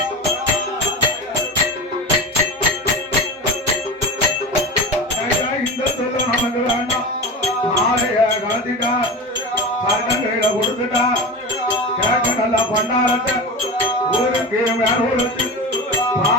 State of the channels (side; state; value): both; normal; correlation 0.27